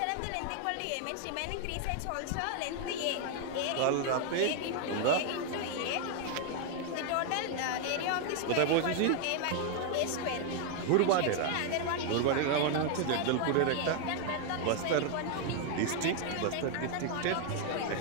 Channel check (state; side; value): different; both; correlation 0.00